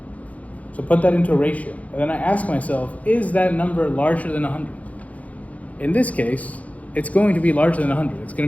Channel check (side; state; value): right; late; 0.069 ms